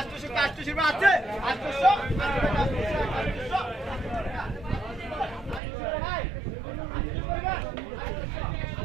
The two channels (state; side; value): drops out; left; at 5.6 s